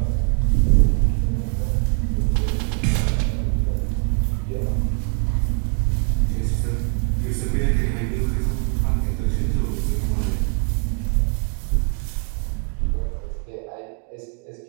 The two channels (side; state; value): left; quieter; 38.3 dB